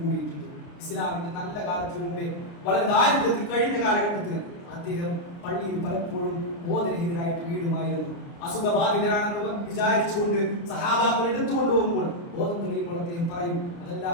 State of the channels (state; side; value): late; right; 29 ms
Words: കൂടിയിട്ടുണ്ട്. ഇസ്ലാമിന്റെ നല്ല കാലത്തിന് മുമ്പേ വളരെ ദാരിദ്ര്യത്തിൽ കഴിഞ്ഞ കാലഘട്ടത്തിൽ അദ്ദേഹം പള്ളിയിൽ പലപ്പോഴും ബോധരഹിതരായിട്ട് വീടുമായിരുന്നു. അസുഖബാധിതരാണെന്ന് വിചാരിച്ചുകൊണ്ട് സഹാബാക്കൾ എടുത്തുകൊണ്ട് പോകുമ്പോൾ ബോധം തെളിയുമ്പോൾ അദ്ദേഹം പറയും, അതല്ല,